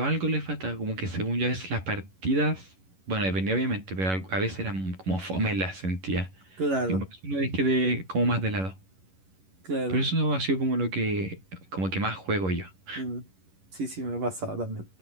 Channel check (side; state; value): left; late; 11 ms